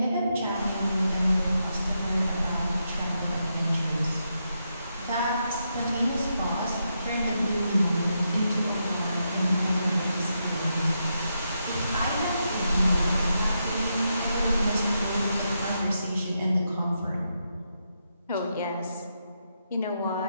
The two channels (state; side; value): inverted; both; correlation -0.83